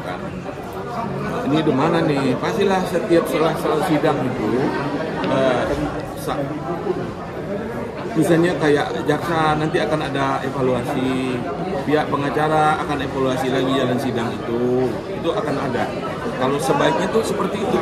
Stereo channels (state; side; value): identical; both; correlation 1.00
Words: kan. Ini di mana nih? Pastilah setiap setelah sidang itu misalnya kayak jaksa nanti akan ada evaluasi pihak pengacara akan evaluasi lagi jalan sidang itu akan ada. Kalau sebaiknya tuh seperti itu,